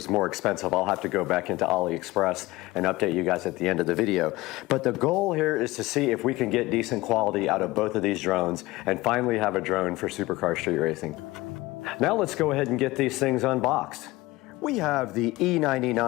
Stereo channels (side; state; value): right; quieter; 19.8 dB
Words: more expensive. I'll have to go back into AliExpress and update you guys at the end of the video. But the goal here is to see if we can get decent quality out of both of these drones and finally have a drone for Supercar Street Racing. Now let's go ahead and get these things unboxed. We have the